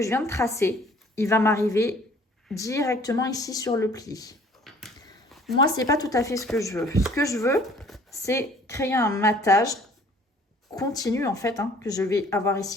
je viens de tracer, il va m'arriver directement ici sur le pli. Moi, ce n'est pas tout à fait ce que je veux. Ce que je veux, c'est créer un matage continu en fait, hein, que je vais avoir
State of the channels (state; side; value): normal; both; correlation 0.55